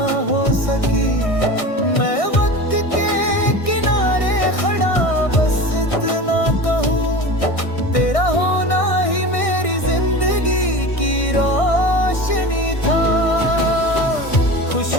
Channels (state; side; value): late; right; 1.6 ms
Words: हो सकी। मैं वक्त के किनारे खड़ा बस इतना कहूँ, तेरा होना ही मेरी जिंदगी की रोशनी था।